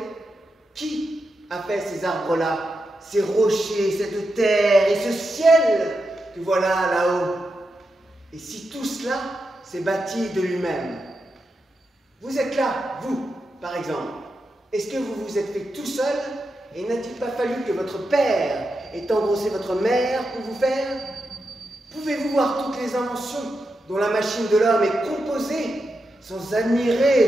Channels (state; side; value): normal; both; correlation 0.87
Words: qui a fait ces arbres-là, ces rochers, cette terre et ce ciel que voilà là-haut. Et si tout cela s'est bâti de lui-même. Vous êtes là, vous, par exemple. Est-ce que vous vous êtes fait tout seul Et n'a-t-il pas fallu que votre père ait engrossé votre mère pour vous faire? Pouvez-vous voir toutes les inventions dont la machine de l'homme est composée, sans